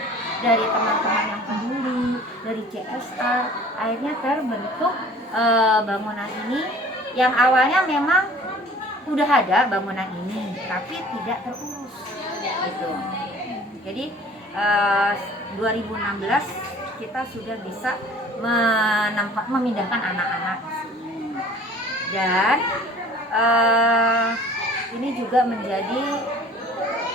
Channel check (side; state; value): both; normal; correlation 0.49